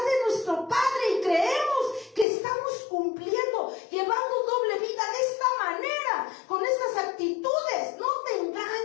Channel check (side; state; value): right; drops out; at 2.2 s